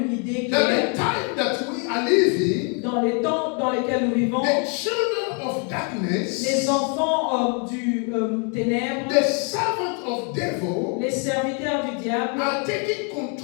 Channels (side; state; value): right; quieter; 38.4 dB